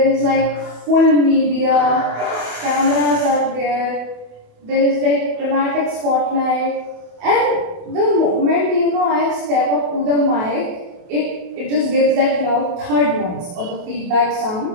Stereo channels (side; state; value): left; late; 28 ms